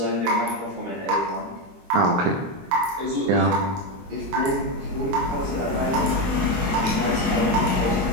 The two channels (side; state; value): left; late; 22 ms